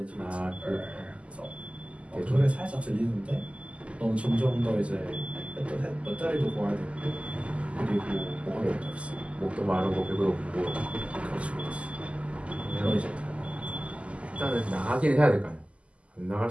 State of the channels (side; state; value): left; late; 0.060 ms